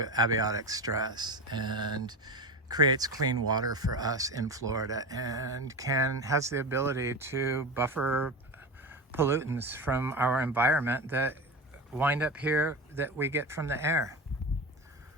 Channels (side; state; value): both; normal; correlation 0.25